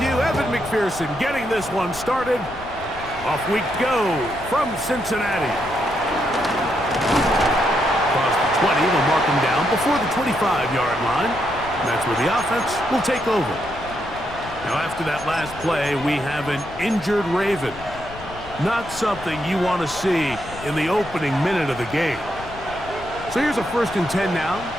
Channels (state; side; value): noise; left; rumble, 15 dB below the sound